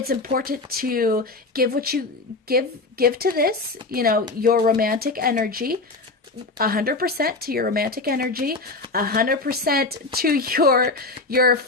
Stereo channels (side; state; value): right; quieter; 3.5 dB